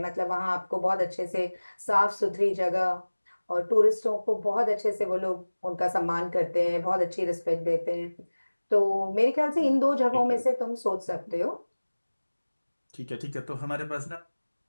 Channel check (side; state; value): both; inverted; correlation -1.00